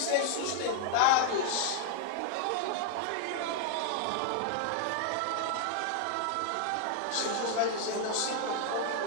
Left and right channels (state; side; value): different; both; correlation 0.00